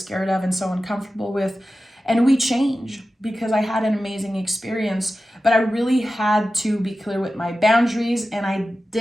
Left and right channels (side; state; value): both; normal; correlation 0.94